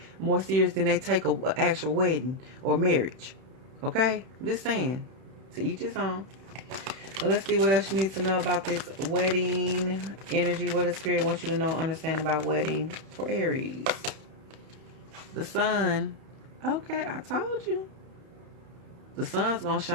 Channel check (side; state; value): left; late; 31 ms